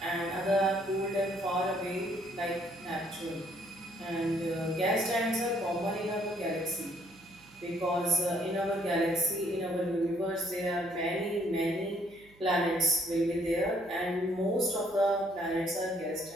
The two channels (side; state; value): right; noise; hum, 26 dB below the sound